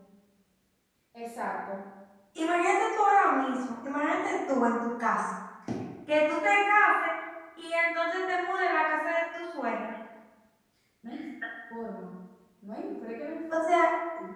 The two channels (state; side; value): identical; both; correlation 1.00